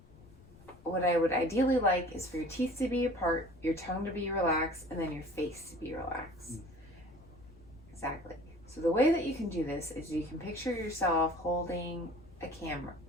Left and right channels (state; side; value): noise; left; rumble, 24 dB below the sound